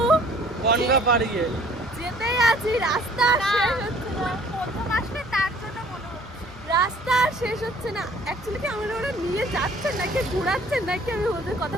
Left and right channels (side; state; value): both; normal; correlation 0.55